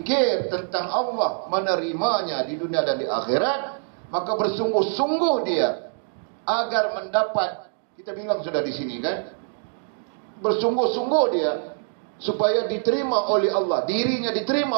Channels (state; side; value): silent; left; 62 dB below the other